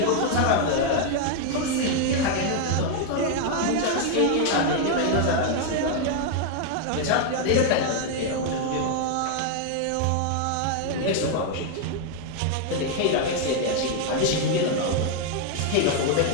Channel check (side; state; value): both; different; correlation 0.00